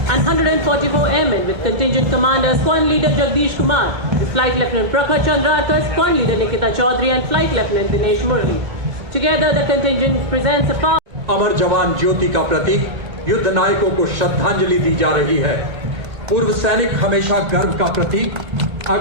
and 144 airmen with contingent commander Squadron Leader Jagdish Kumar, the Flight Lieutenant Prakhar Chandrakar, Squadron Leader Nikita Chaudhary and Flight Lieutenant Dinesh Murli. Together the contingent presents a power. अमर जवान ज्योति का प्रतीक युद्ध नायकों को श्रद्धांजलि दी जा रही है। पूर्व सैनिक हमेशा गर्व का प्रतीक।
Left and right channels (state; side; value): late; left; 1.8 ms